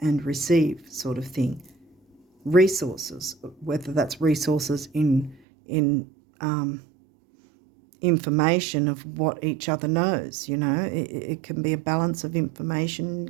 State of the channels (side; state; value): left; drops out; at 5.4 s